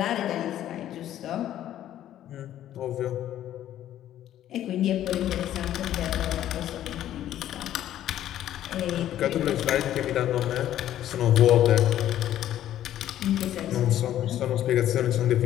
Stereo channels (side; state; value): right; quieter; 12.1 dB